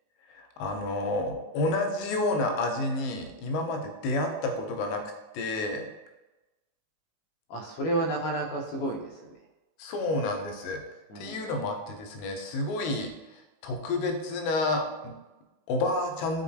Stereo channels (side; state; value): right; late; 19 ms